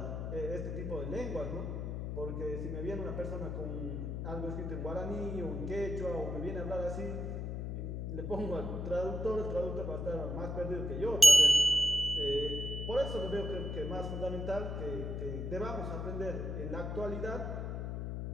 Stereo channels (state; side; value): noise; left; hum, 3 dB below the sound